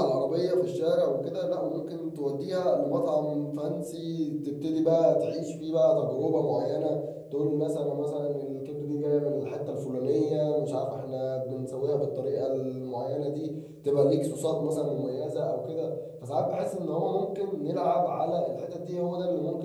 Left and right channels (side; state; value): both; identical; correlation 1.00